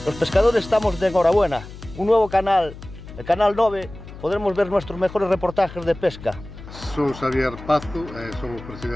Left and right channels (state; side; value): noise; left; hum, 15 dB below the sound